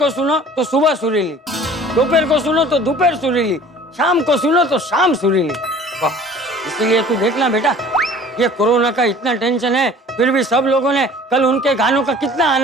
सुनो तो सुबह सुरीली, दोपहर को सुनो तो दोपहर सुरीली, शाम को सुनो तो शाम सुरीली। वाह, इसीलिए तू देखना बेटा, ये कोरोना का इतना टेंशन है फिर भी सब लोगों ने कल उनके गानों का कितना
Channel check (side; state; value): both; normal; correlation 0.47